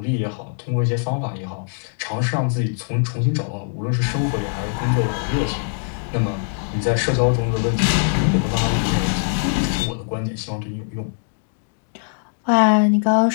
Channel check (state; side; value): silent; right; digital silence